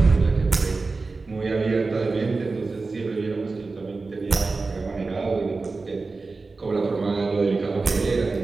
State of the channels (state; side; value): quieter; left; 3.9 dB